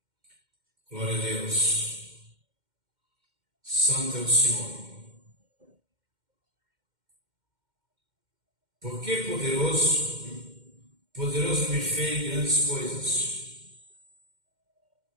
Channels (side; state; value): left; late; 2.1 ms